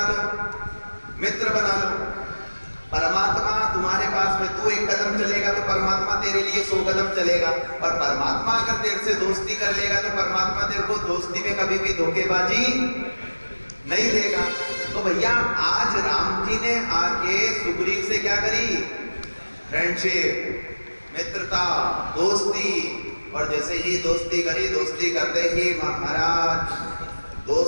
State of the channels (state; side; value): inverted; both; correlation -1.00